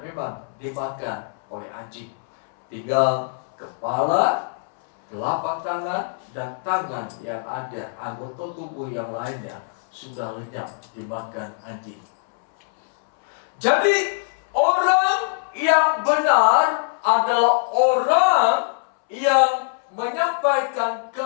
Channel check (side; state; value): right; silent; 63 dB below the other